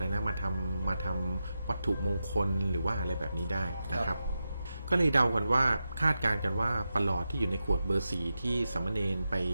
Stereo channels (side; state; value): both; inverted; correlation -0.90